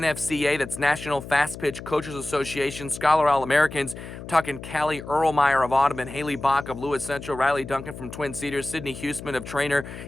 that's National Fast Pitch Coaches Association, Scholar All-Americans. We're talking Callie Erlmeyer of Audubon, Haley Bach of Lewis Central, Riley Duncan from Twin Cedars, Sydney Huseman of Trainer,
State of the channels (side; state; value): left; noise; hum, 12 dB below the sound